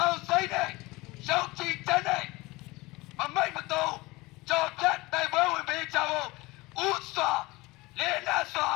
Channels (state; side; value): quieter; right; 21.9 dB